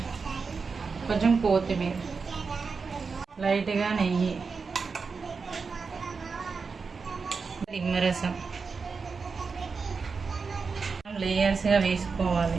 కొంచెం కొత్తిమీర, లైట్గా నెయ్యి, నిమ్మరసం లేయర్స్గా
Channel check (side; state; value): left; quieter; 4.9 dB